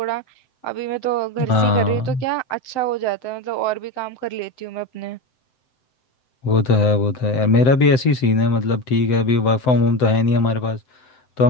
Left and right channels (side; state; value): right; late; 7.8 ms